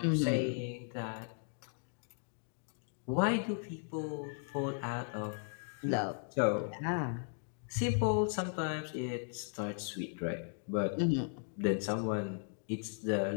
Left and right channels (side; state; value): right; silent; 53 dB below the other